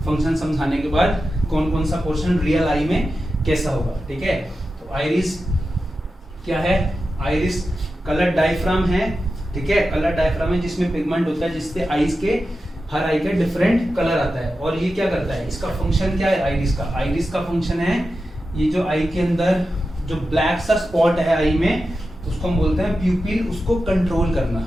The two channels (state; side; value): normal; both; correlation 0.91